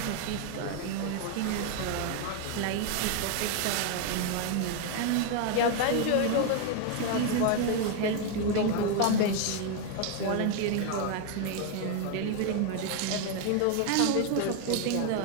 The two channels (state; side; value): different; both; correlation 0.01